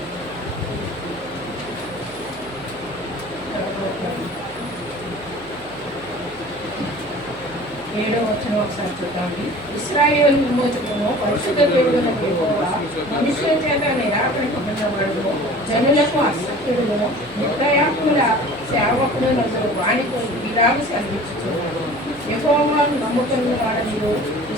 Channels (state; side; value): noise; right; hum, 23 dB below the sound